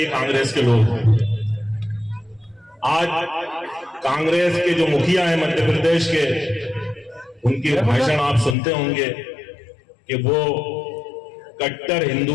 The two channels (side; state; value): right; drops out; at 8.6 s